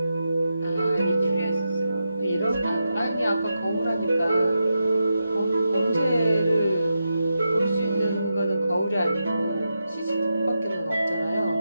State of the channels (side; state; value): both; inverted; correlation -0.87